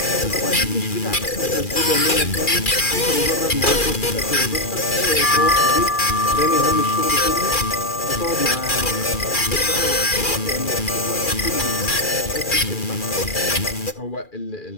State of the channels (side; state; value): right; late; 2.4 ms